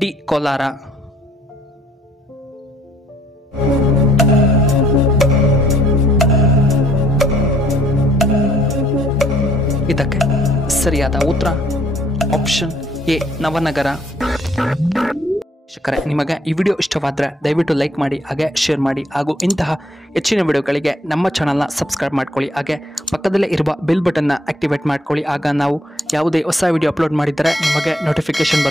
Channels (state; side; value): normal; both; correlation 0.64